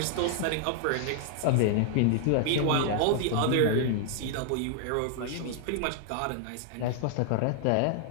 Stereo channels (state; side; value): different; both; correlation 0.00